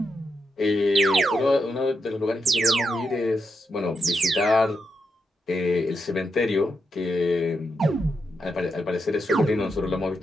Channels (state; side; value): normal; both; correlation 0.84